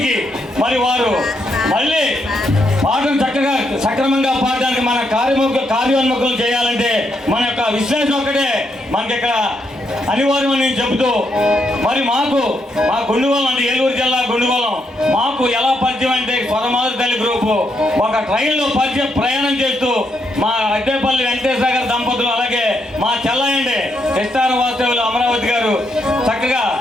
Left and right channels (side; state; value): both; normal; correlation 0.78